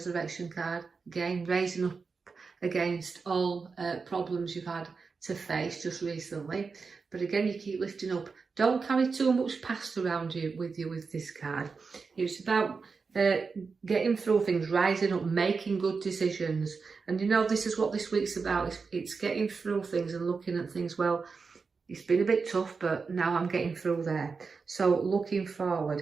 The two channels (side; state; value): left; quieter; 4.8 dB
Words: card. Again, raising up against all problems you've had to face just recently. But again, you keep lifting up. Don't carry too much past around you with this card. It's about getting through things, rising up, making good decisions. And you know, this is what this week's about. It's getting through things and looking at things. Well, it's been a bit tough, but now I'm getting through there. So looking forward